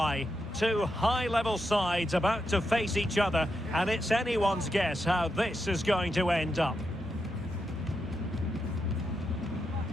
Two high-level sides about to face each other, and it's anyone's guess how this is going to end up.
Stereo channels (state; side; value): normal; both; correlation 0.85